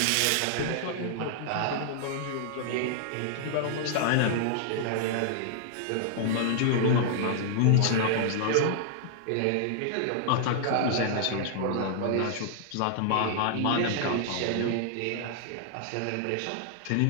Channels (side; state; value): both; different; correlation -0.01